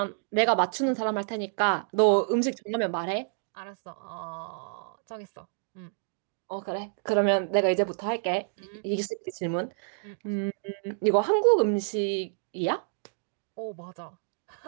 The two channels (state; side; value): silent; left; digital silence